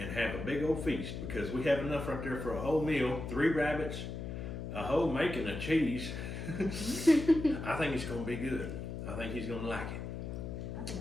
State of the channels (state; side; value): noise; left; hum, 6 dB below the sound